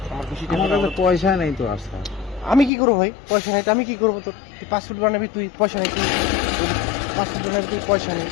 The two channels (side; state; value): right; drops out; at 2.7 s